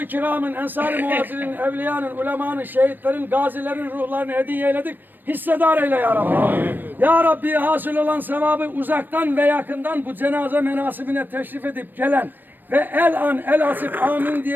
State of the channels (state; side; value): late; left; 0.092 ms